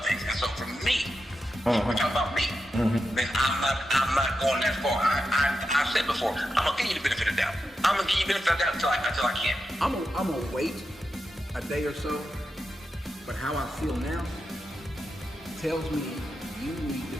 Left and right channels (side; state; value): both; normal; correlation 0.88